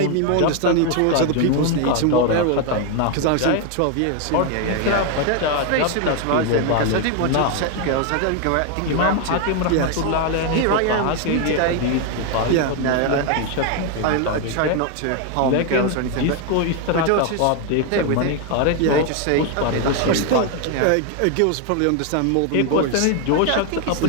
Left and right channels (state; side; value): different; both; correlation 0.01